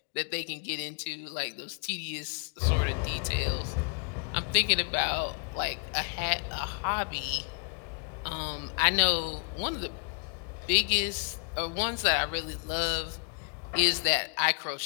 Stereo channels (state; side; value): quieter; right; 39.3 dB